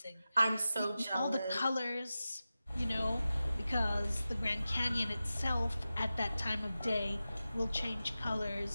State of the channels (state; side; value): inverted; both; correlation -0.94